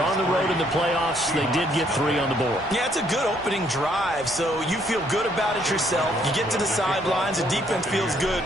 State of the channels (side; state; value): right; noise; rumble, 22 dB below the sound